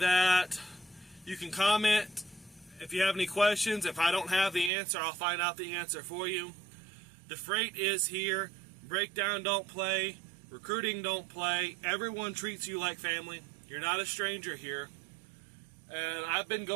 you can comment If you have any questions, if I don't have the answer, I'll find out the answer for you. The freight is here. Breakdown don't play. Recruiting don't play. Everyone treats you like family. You're not a stranger here. And I've been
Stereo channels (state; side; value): drops out; left; at 4.7 s